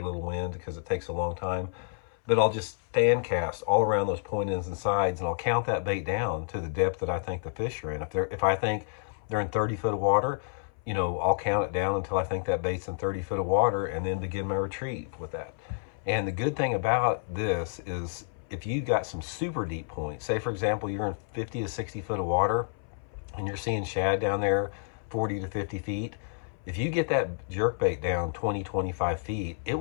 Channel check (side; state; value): right; silent; 58 dB below the other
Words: little wind, because it takes a long time. But I'll just fan cast all around those point ends and sides, and I'll count that bait down to the depth that I think the fish are in. If I think they're in 30 foot of water, I'll count it down until I think that bait's in 30 foot of water, and then begin my retrieve with that. And the good thing about this is, if you got some super deep points, say for example, you're in 50 to 60 foot of water and you're seeing shad down there 40 to 50 feet, if you get that jerkbait down 20, 25 feet, it